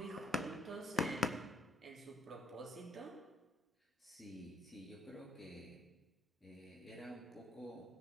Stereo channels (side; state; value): both; normal; correlation 0.69